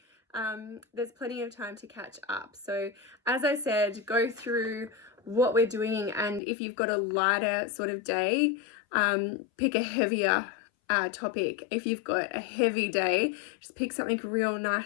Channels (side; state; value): right; drops out; at 6.4 s